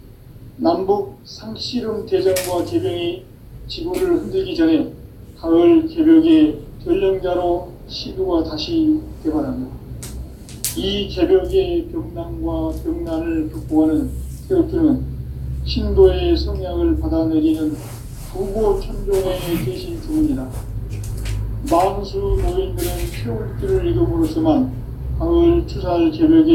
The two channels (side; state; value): both; identical; correlation 1.00